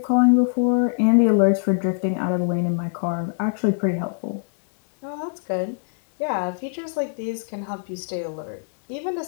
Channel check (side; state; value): right; silent; digital silence